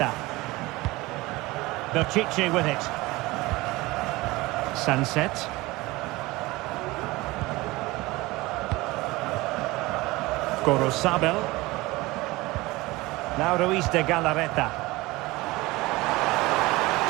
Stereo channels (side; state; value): left; quieter; 20.9 dB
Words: Berchiche with it. Sunset. Gorosabel. Now Ruiz de Galarreta.